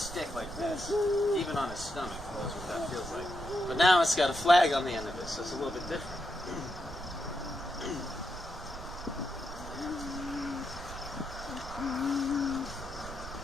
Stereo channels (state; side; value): noise; right; rumble, 12 dB below the sound